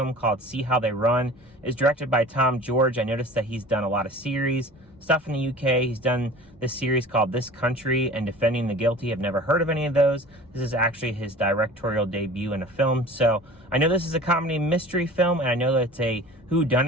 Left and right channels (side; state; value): both; normal; correlation 0.42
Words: called See How They Run. It's directed by Tom George. I noticed that he's done a lot of series, stuff in the UK. He's done this series called This Country and Defending the Guilty. I've never heard of any of those. This is actually his directorial debut in a film. So I know this is a comedy mystery film, and I know that it's a